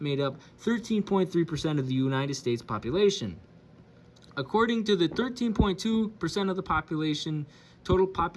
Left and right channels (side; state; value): both; identical; correlation 1.00